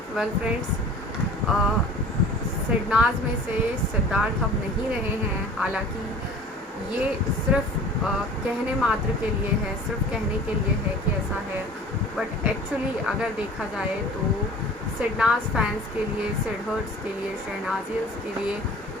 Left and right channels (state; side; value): normal; both; correlation 0.44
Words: Well friends, SidNaaz में से सिद्धार्थ अब नहीं रहे हैं। हालांकि ये सिर्फ कहने मात्र के लिए है, सिर्फ कहने के लिए है कि ऐसा है, बट एक्चुअली अगर देखा जाए तो सिडनाज फैंस के लिए, सिडहर्ट्स के लिए, शहनाजियंस के लिए